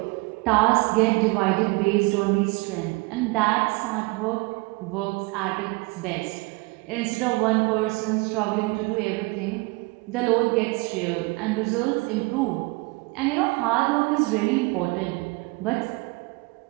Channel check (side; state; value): left; quieter; 25.7 dB